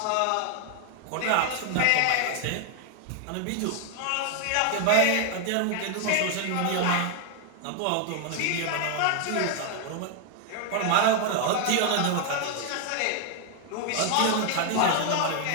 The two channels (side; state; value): both; different; correlation 0.00